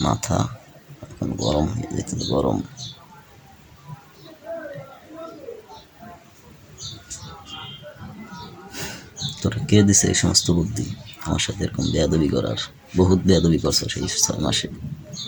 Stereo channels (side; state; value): both; identical; correlation 1.00